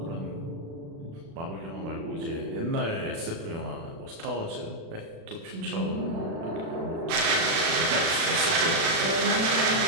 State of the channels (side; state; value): left; late; 36 ms